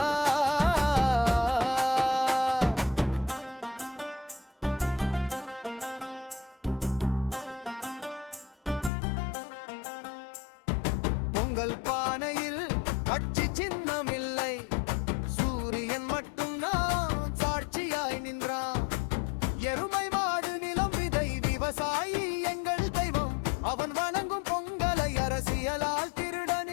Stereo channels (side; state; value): right; drops out; at 8.9 s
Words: பொங்கல் பானையில் கட்சி சின்னம் இல்லை, சூரியன் மட்டும் நான் சாட்சியாய் நின்றான். எருமை மாடு நிலம் விதை விவசாயி எங்கள் தெய்வம், அவன் வணங்கும் பொங்கலை அரசியலால் திருட